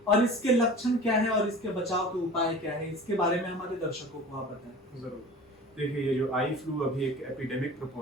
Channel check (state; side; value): normal; both; correlation 0.39